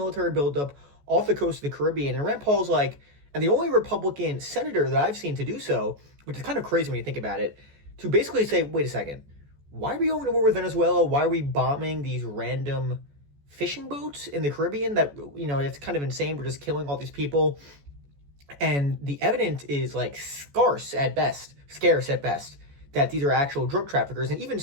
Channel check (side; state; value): left; late; 14 ms